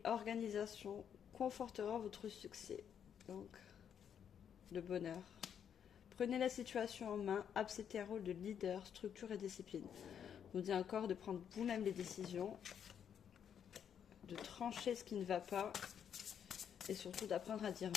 organisation confortera votre succès. Donc, le bonheur. Prenez la situation en main, acceptez un rôle de leader, structure et discipline. Je vous dis encore de prendre vous-même les décisions, de trancher ce qui ne va pas et surtout d'apprendre à dire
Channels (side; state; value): right; quieter; 8.4 dB